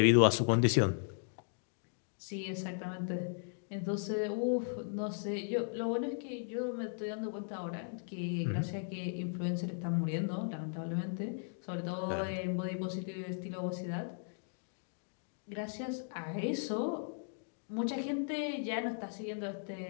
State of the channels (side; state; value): right; silent; digital silence